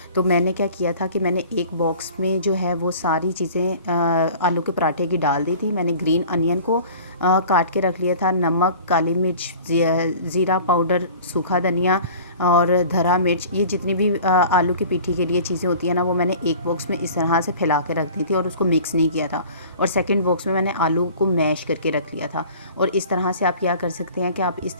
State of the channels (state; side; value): inverted; both; correlation -0.44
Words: तो मैंने क्या किया था कि मैंने एक बॉक्स में जो है वो सारी चीज़ें आलू के पराठे की डाल दी थी। मैंने ग्रीन अनियन को काट के रख लिया था, नमक, काली मिर्च, ज़ीरा पाउडर, सूखा धनिया और धरा मिर्च, ये जितनी भी आलू की पीठी के लिए चीज़ें होती हैं ना, वो मैंने एक बॉक्स में इस तरह से फैला के रख दी थी और उसको मिक्स नहीं किया था। और सेकंड बॉक्स में मैंने आलू को मैश करके रख लिया था। और इस तरह से आप क्या कर सकते हैं कि आप इस